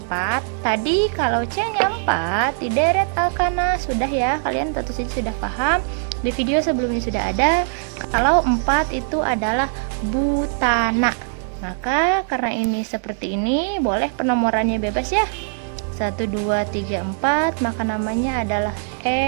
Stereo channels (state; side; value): silent; left; digital silence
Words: 4. Tadi kalau C-nya 4, dideret alkana. Sudah ya, kalian tentu saja sudah paham. Di video sebelumnya sudah ada. Kalau 4 itu adalah butana. Maka karena ini seperti ini, boleh penomorannya bebas ya. 1, 2, 3, 4, maka namanya adalah